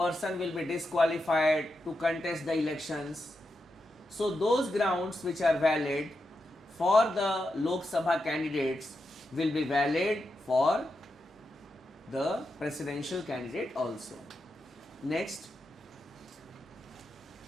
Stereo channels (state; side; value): normal; both; correlation 0.87